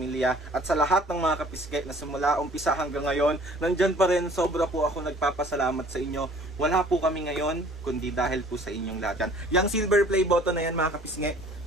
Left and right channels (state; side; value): normal; both; correlation 0.52